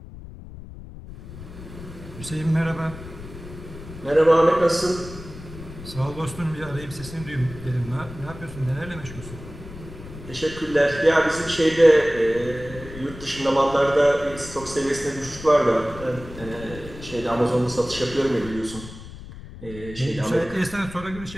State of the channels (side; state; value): left; noise; rumble, 14 dB below the sound